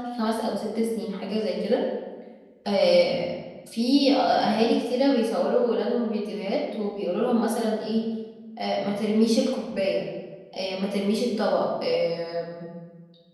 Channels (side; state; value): both; identical; correlation 1.00